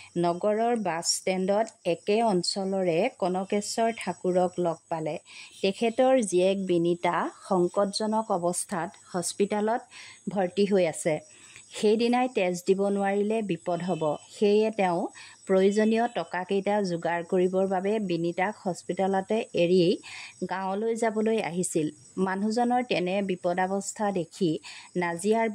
নগৰৰ বাছ ষ্টেণ্ডত একে অঞ্চলৰে কনকেশ্বৰ ঠাকুৰক লগ পালে। তেখেতৰ জীয়েক বিনীতা সংকটজনক অৱস্থাত হস্পিতালত ভৰ্তি হৈ আছে। সেইদিনাই তেজ দিব নোৱাৰিলে বিপদ হ'ব। সেয়ে তেওঁ প্ৰয়োজনীয় টকাকেইটা যোগাৰ কৰিবৰ বাবে বিনীতাক হস্পিতালতে এৰি গাঁৱলৈ যাবলৈ আহিছিল। মানুহজনৰ তেনে বিপদাৱস্থা দেখি নাজিয়াৰ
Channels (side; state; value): both; identical; correlation 1.00